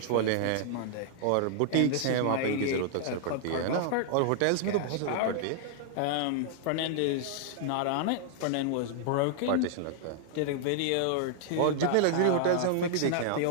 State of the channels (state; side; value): different; both; correlation -0.01